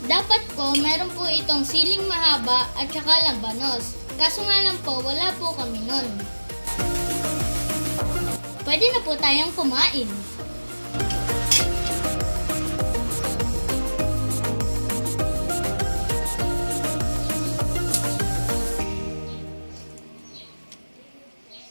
Dapat po, meron po itong siling mahaba at saka labanos. Kaso nga lang po, wala po kami nun. Pwede na po tayong kumain.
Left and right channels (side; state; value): both; inverted; correlation -1.00